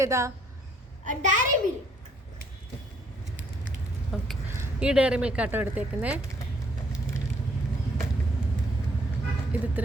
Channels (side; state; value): both; normal; correlation 0.65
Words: ഏതാ? ഓക്കെ, ഈ ഡയറി മിൽക്ക് ആട്ടോ എടുത്തേക്കുന്നേ. ഇത് ഇത്ര